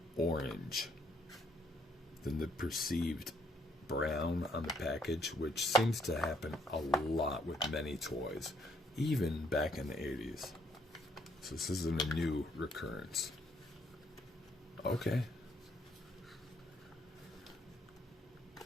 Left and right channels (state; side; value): normal; both; correlation 0.68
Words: orange than the perceived brown on the package, which seems to happen a lot with many toys, even back in the 80s. So this isn't a new recurrence. Okay.